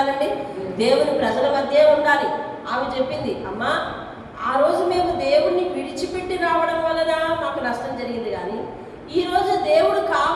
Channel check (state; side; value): identical; both; correlation 1.00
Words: దేవుని ప్రజల మధ్య ఉండాలి. ఆమె చెప్పింది, అమ్మా ఆ రోజు మేము దేవుణ్ణి విడిచిపెట్టి రావడం వలన మాకు నష్టం జరిగింది, కానీ ఈరోజు దేవుడు